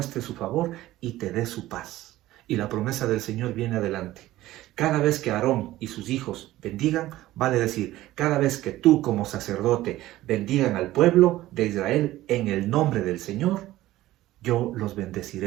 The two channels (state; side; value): quieter; left; 15.8 dB